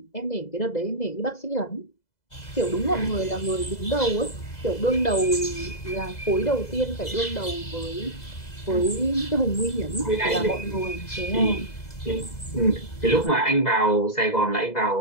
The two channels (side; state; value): right; late; 2.0 ms